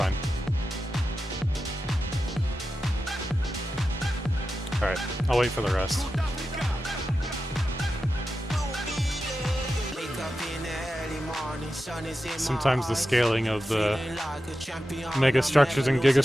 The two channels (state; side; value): normal; both; correlation 0.91